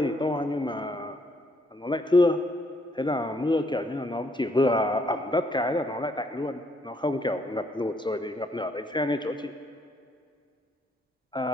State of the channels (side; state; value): both; normal; correlation 0.70